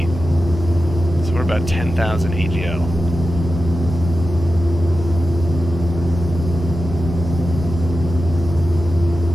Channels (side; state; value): both; normal; correlation 0.92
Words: So we're about 10,000 AGL.